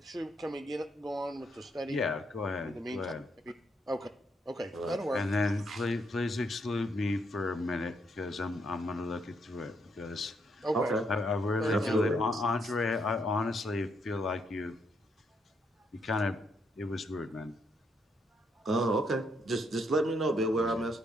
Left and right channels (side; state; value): both; normal; correlation 0.75